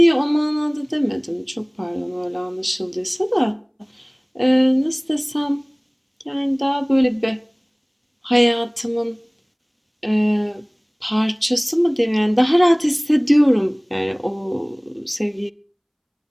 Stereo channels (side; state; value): both; identical; correlation 1.00